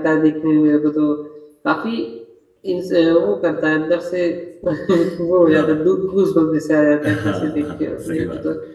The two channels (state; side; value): identical; both; correlation 1.00